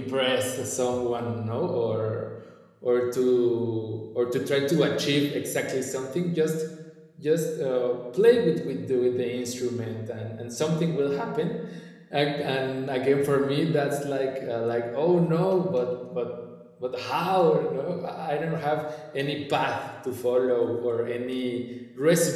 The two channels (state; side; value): identical; both; correlation 1.00